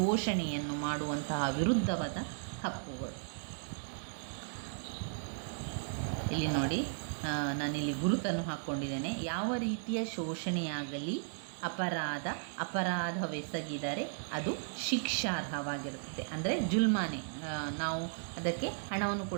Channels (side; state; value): left; silent; digital silence